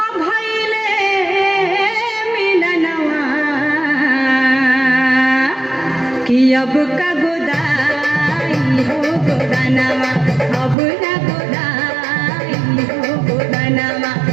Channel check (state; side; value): drops out; left; at 10.8 s